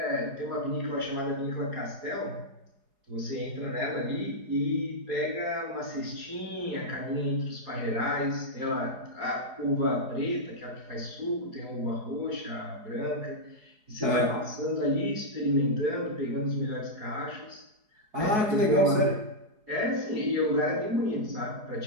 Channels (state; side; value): late; left; 4.8 ms